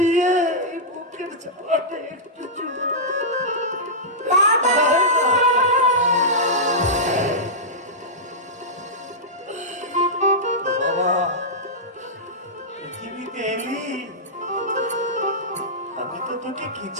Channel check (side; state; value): both; normal; correlation -0.12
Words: এই বুকের জ্বালাটা একটু চুলো। বাবা, পৃথিবীতে এলি, আমি তো তোকে